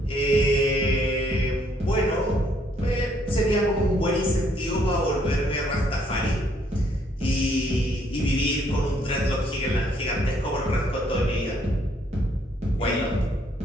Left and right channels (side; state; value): both; normal; correlation 0.68